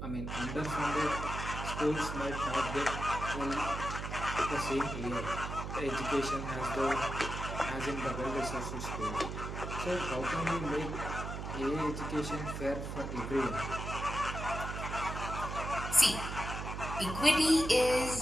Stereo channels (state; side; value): noise; right; hum, 6 dB below the sound